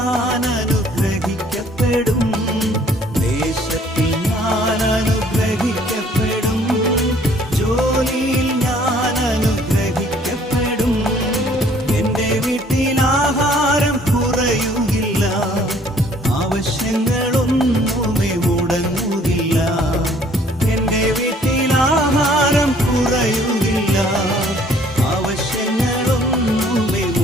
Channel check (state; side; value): normal; both; correlation 0.59